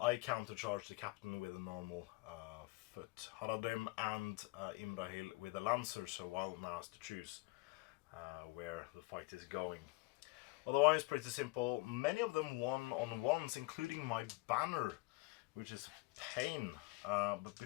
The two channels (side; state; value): right; quieter; 23.8 dB